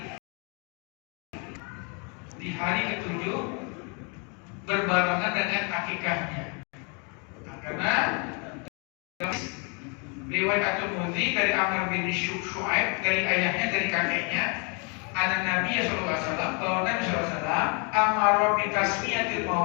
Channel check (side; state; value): right; quieter; 35.2 dB